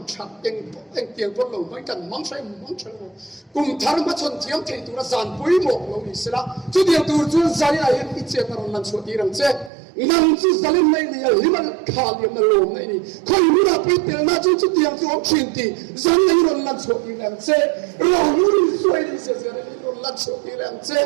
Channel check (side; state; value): left; drops out; at 9.7 s